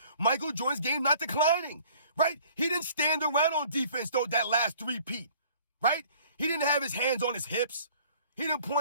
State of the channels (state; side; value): inverted; both; correlation -0.54